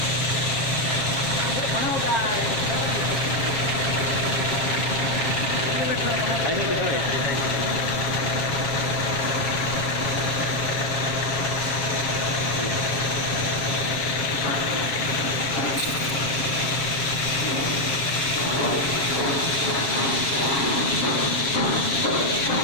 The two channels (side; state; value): right; late; 7.3 ms